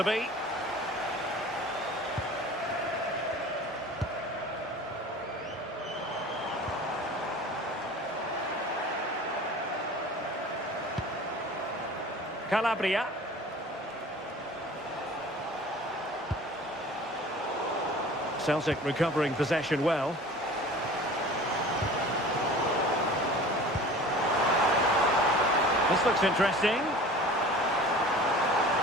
be. Calabria. Celtic recovering possession well. This looks interesting.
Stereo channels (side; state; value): both; normal; correlation 0.42